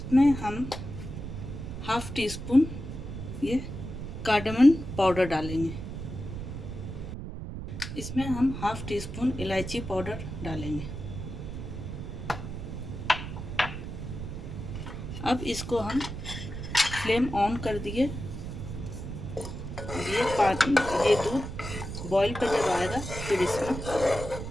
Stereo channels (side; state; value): right; noise; rumble, 7 dB below the sound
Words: हम हाफ़ टी स्पून ये कार्डमम पाउडर डालेंगे। इसमें हम हाफ़ टी स्पून इलायची पाउडर डालेंगे। अब इसको हम फ्लेम ऑन कर दिए। ये दूध बॉईल पे जब आएगा फिर इसमें